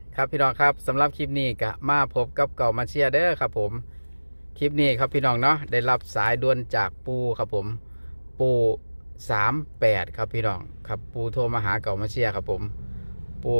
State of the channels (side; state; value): both; inverted; correlation -1.00